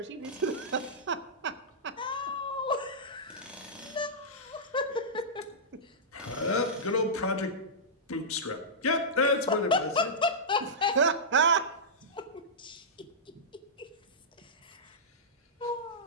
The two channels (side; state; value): both; normal; correlation -0.13